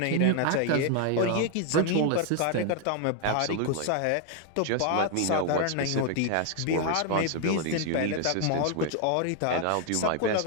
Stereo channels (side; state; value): both; different; correlation 0.00